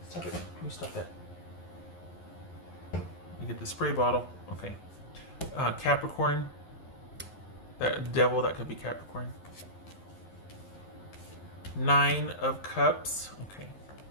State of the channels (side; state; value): right; late; 11 ms